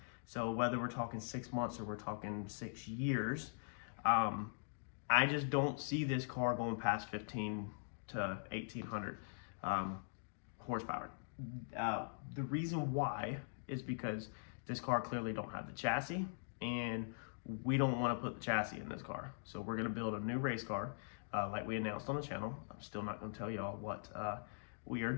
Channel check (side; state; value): right; silent; digital silence